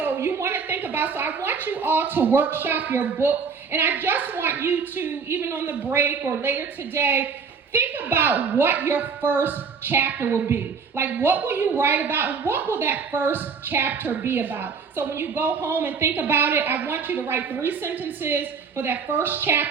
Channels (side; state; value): left; quieter; 5.6 dB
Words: you want to think about, so I want you all to workshop your book. And I just want you to, even on the break or later today, think about what your first chapter will be. Like, what will you write about, and what will that first chapter be about? So when you go home and think about it, I want you to write 3 sentences for that first